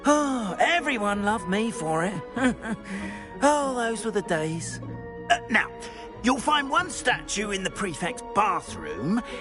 Oh, everyone loved me for it. Oh, those were the days. Now, you'll find one statue in the prefect's bathroom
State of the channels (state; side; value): identical; both; correlation 1.00